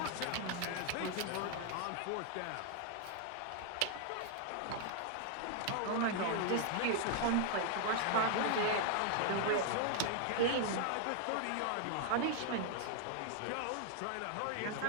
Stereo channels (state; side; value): different; both; correlation 0.00